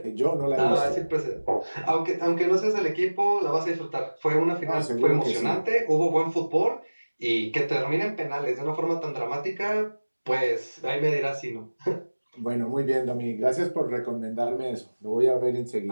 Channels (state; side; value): inverted; both; correlation -1.00